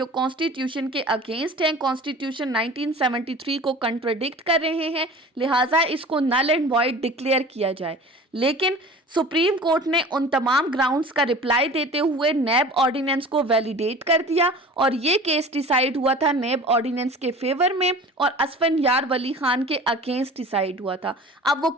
कॉन्स्टिट्यूशन के अगेंस्ट हैं, कॉन्स्टिट्यूशन 1973 को कंट्राडिक्ट कर रहे हैं, लिहाजा इसको नल एंड वॉइड डिक्लेयर किया जाए। लेकिन सुप्रीम कोर्ट ने उन तमाम ग्राउंड्स का रिप्लाई देते हुए नैब ऑर्डिनेंस को वैलिडेट कर दिया और ये केस डिसाइड हुआ था नैब ऑर्डिनेंस के फेवर में और असफंयार वली खान के अगेंस्ट डिसाइड हुआ था। अब वो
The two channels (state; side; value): normal; both; correlation 0.41